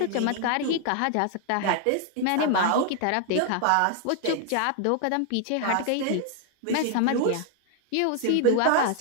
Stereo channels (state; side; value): different; both; correlation 0.00